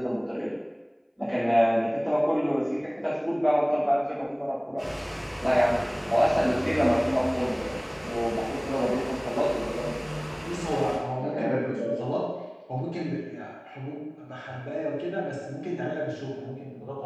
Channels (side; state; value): both; identical; correlation 1.00